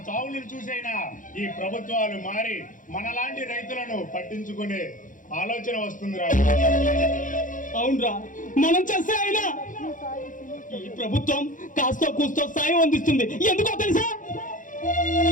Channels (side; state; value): right; late; 0.38 ms